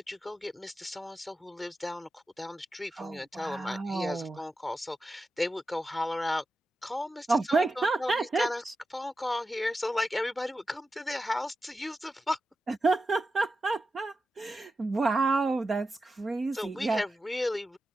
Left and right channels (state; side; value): normal; both; correlation 0.91